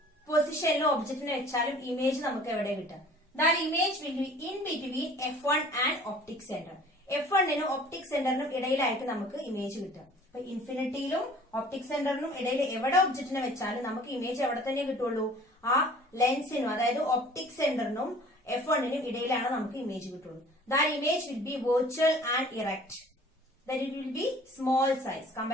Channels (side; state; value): both; normal; correlation 0.50